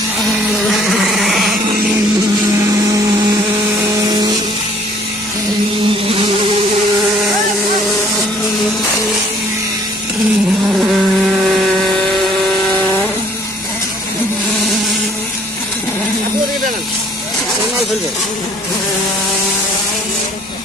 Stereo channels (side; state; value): left; noise; hum, 28 dB below the sound